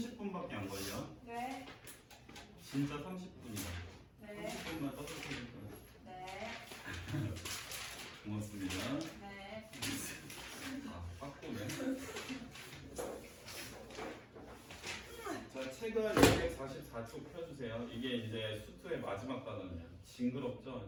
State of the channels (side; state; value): both; identical; correlation 1.00